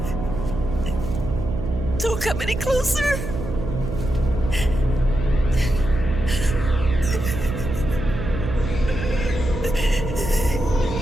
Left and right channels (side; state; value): right; noise; hum, 6 dB below the sound